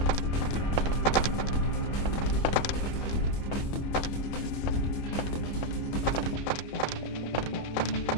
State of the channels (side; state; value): right; late; 25 ms